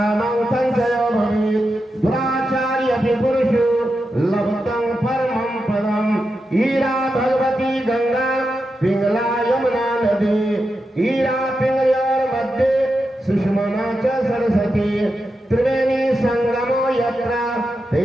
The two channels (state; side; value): normal; both; correlation 0.88